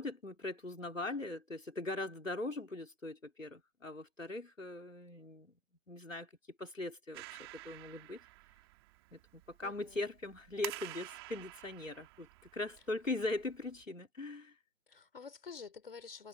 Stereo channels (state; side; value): normal; both; correlation 0.50